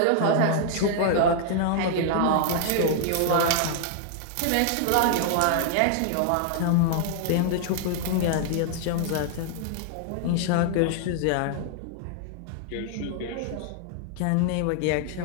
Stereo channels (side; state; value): both; different; correlation 0.00